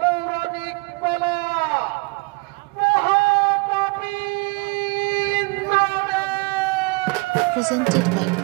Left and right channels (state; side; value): quieter; left; 28.3 dB